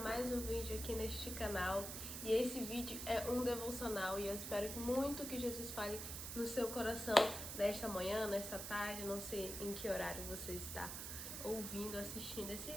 mais um vídeo aqui neste canal. E esse vídeo é um devocional e eu espero muito que Jesus fale no seu coração nesta manhã, nesta tarde, não sei em que horário você está ouvindo, assistindo esse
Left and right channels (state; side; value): noise; right; hiss, 6 dB below the sound